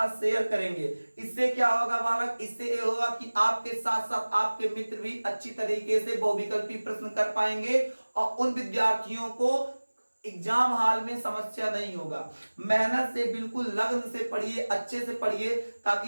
शेयर करेंगे। इससे क्या होगा बालक, इससे ये होगा कि आपके साथ साथ आपके मित्र भी अच्छी तरीके से बहुविकल्पी प्रश्न कर पाएंगे और उन विद्यार्थियों को एग्जाम हॉल में समस्या नहीं होगा। मेहनत से बिल्कुल लगन से पढ़िए, अच्छे से पढ़िए,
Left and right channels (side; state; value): both; inverted; correlation -1.00